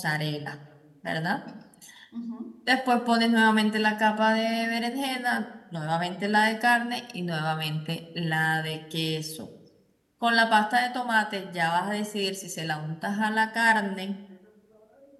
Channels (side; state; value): both; identical; correlation 1.00